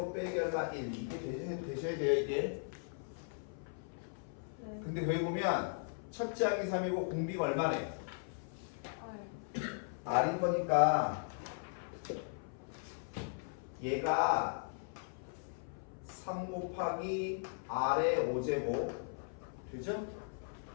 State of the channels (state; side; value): silent; right; 52 dB below the other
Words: 빼기 얼마 1 이게 되셔야 돼요 이게. 네. 근데 여기 보면 첫째 항이 3이고 공비가 얼마네? R. R인 거니까 얘가 3 곱하기 R의 5제곱 되죠?